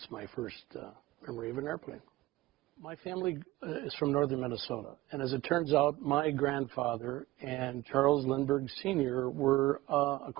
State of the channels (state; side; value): quieter; left; 18.5 dB